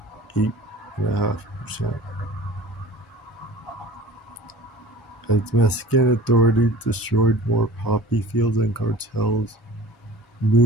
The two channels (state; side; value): normal; both; correlation 0.44